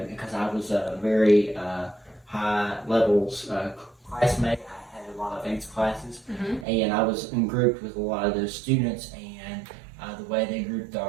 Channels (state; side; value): drops out; left; at 6.7 s